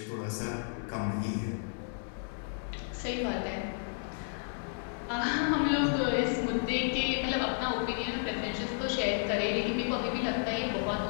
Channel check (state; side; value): silent; right; digital silence